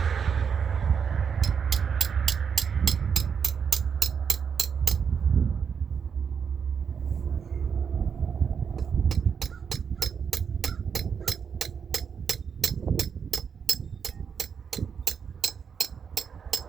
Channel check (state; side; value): quieter; left; 6.7 dB